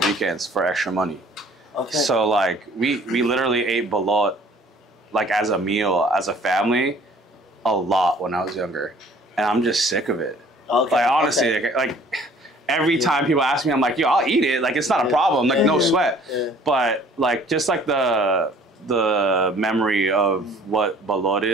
for extra money. Okay. So like we literally ate balot like as a meal as a family a lot when I was younger, and I'm just sick of it. Okay. Like honestly, Okay. like every time people ask me, I'm like, yo, I'll eat it. Like it's not a problem. Like no sweat. Yeah. But like just like the memory of what balot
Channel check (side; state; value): both; normal; correlation 0.54